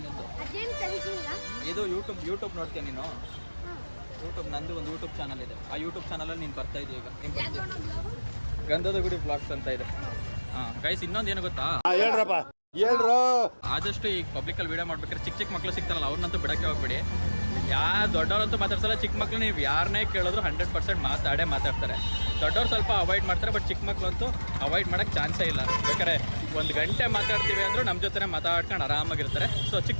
ನಿಂದು? ಇದು ಯೂಟ್ಯೂಬ್ ನೋಡ್ತೀಯ ನೀನು? ಯೂಟ್ಯೂಬ್ ನಂದು ಒಂದು ಯೂಟ್ಯೂಬ್ ಚಾನಲ್ ಇದೆ. ಆ ಯೂಟ್ಯೂಬ್ ಚಾನಲಲ್ಲಿ ನೀನು ಬರ್ತಾ ಇದೀಯ ಈಗ. ಗಂಧದ ಗುಡಿ ಬ್ಲಾಗ್ಸ್ ಅಂತ ಇದೆ. ಹಾಂ ಗೈಸ್, ಇನ್ನೊಂದು ಏನು ಗೊತ್ತಾ, ಆದಷ್ಟು ಈ ಪಬ್ಲಿಕಲ್ಲಿ ವೀಡಿಯೋ ಮಾಡ್ಬೇಕಾದ್ರೆ ಚಿಕ್ಕ ಮಕ್ಕಳು ಸಿಗ್ತಾರಲ್ಲ ಅವ್ರನ್ನಂತೂ ಬಿಡಕ್ಕೆ ಹೋಗ್ಬೇಡಿ. ದೊಡ್ಡವ್ರಂತೂ ಮಾತಾಡ್ಸಲ್ಲ, ಚಿಕ್ಕ ಮಕ್ಳು ನೀವು ಯಾರನ್ನೇ ಕೇಳಿದ್ರು 100% ಮಾತಾಡ್ತಾರೆ. ದೊಡ್ಡವ್ರು ಸ್ವಲ್ಪ ಅವಾಯ್ಡ್ ಮಾಡ್ತಾರೆ, ಬಟ್ ಚಿಕ್ಕ ಮಕ್ಳು ಅಂತೂ ಅವಾಯ್ಡ್ ಮಾಡೋಕ್ಕೆ ಚಾನ್ಸೇ ಇಲ್ಲ. ಬೇಕಾದ್ರೆ 1 ಗಂಟೆ ಮಾತಾಡ್ತೀವಿ ಅಂದರೂ ನಮ್ಮ ಜೊತೆ ಮಾತಾಡ್ಕೊಂಡು ಆರಾಮಾಗಿರ್ತಾರೆ. ಸೊ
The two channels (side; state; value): both; inverted; correlation -1.00